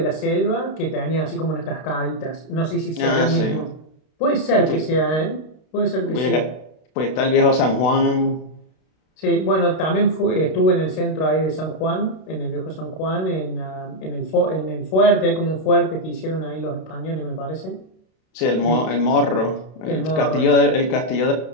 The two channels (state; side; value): late; right; 32 ms